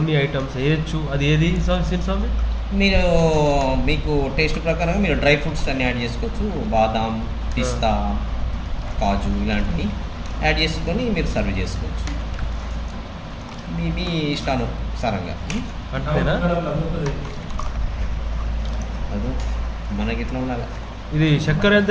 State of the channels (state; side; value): identical; both; correlation 1.00